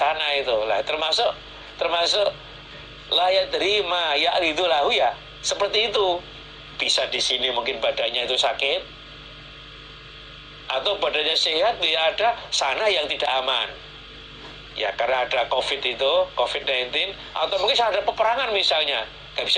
itu lah, termasuk layak terima ya itu lahu, ya seperti itu. Bisa di sini mungkin badannya itu sakit, atau badannya sehat, ya ada sana yang tidak aman, ya karena ada COVID-19, atau mungkin ada peperangan misalnya, nggak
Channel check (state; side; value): identical; both; correlation 1.00